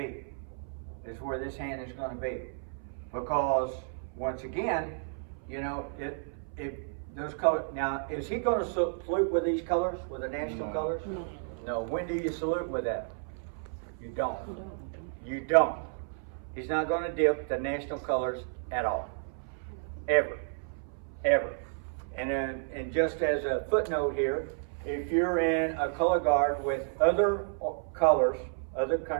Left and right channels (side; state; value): left; silent; 57 dB below the other